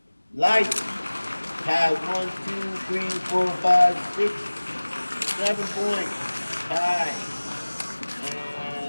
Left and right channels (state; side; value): inverted; both; correlation -1.00